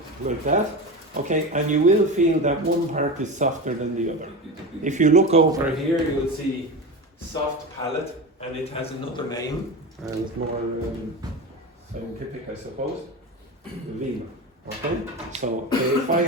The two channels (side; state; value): both; normal; correlation 0.25